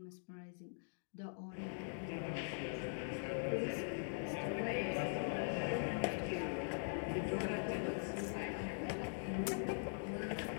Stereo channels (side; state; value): right; silent; digital silence